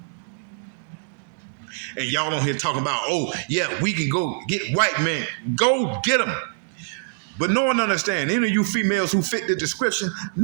And y'all don't hear talking about, oh, yeah, we can go get white men. Go get them. But no one understands. Any of you females who fit the description,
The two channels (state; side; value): silent; left; 63 dB below the other